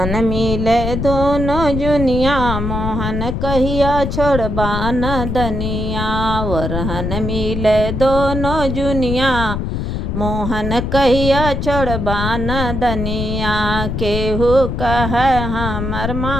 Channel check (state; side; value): noise; left; rumble, 3 dB below the sound